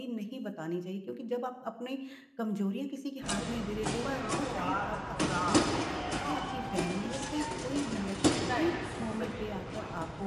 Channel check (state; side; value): identical; both; correlation 1.00